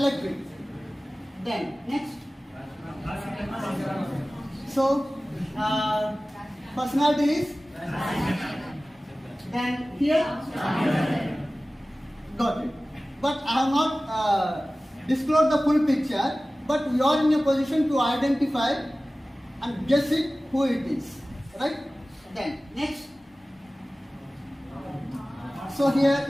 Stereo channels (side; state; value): both; normal; correlation 0.97